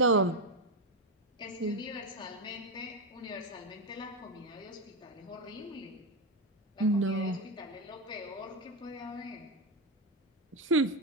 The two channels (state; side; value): normal; both; correlation 0.10